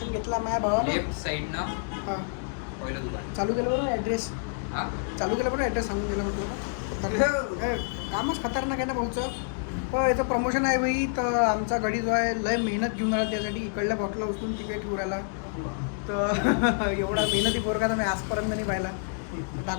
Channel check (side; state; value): right; silent; digital silence